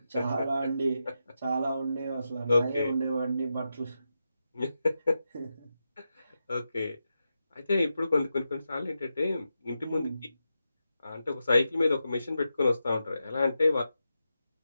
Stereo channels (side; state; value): both; inverted; correlation -0.88